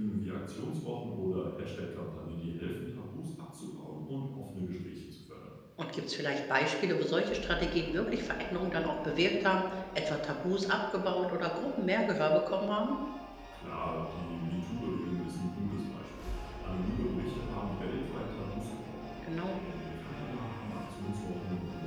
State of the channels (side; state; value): both; identical; correlation 1.00